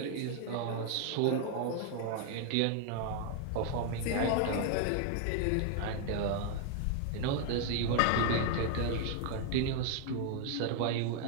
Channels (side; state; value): both; different; correlation 0.00